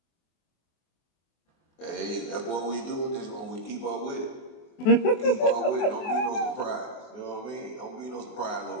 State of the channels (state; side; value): late; right; 23 ms